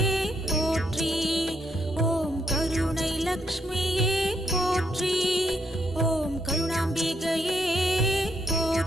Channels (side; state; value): both; normal; correlation 0.75